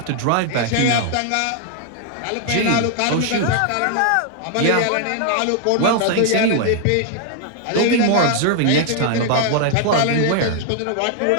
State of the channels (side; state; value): both; different; correlation 0.00